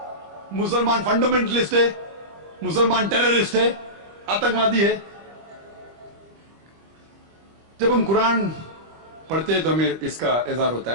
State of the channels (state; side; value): late; left; 25 ms